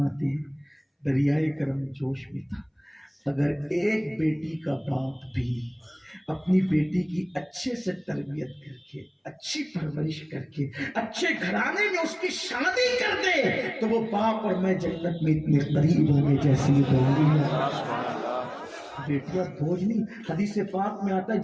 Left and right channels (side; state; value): both; identical; correlation 1.00